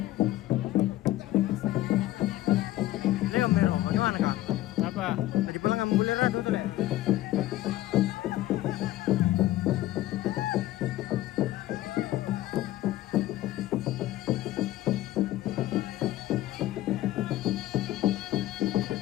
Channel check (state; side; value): quieter; right; 15.4 dB